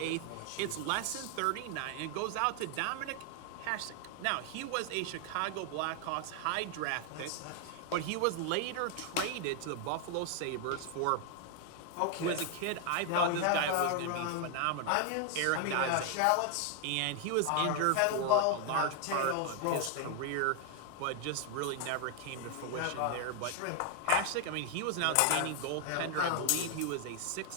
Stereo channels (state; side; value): different; both; correlation 0.00